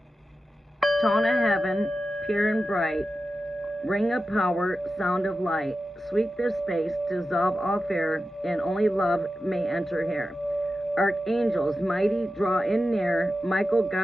Tone of heaven, pure and bright, ring of power, sound of light, sweep this space, dissolve all fear, and only love may enter here. Archangels, mighty, draw in near, Michael,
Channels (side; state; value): both; normal; correlation 0.92